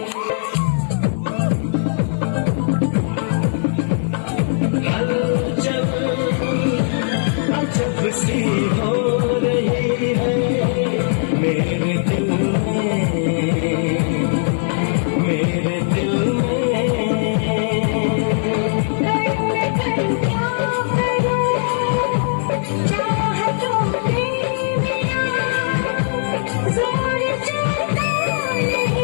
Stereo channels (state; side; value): silent; right; digital silence